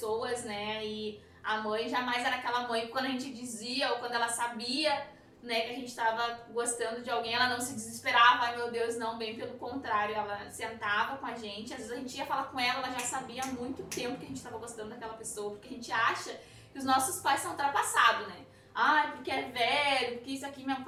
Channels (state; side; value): identical; both; correlation 1.00